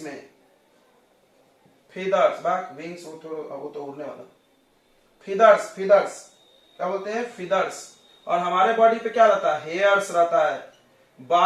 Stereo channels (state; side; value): identical; both; correlation 1.00